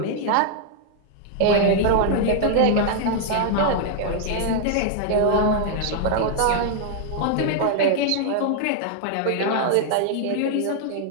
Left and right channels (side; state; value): both; different; correlation 0.00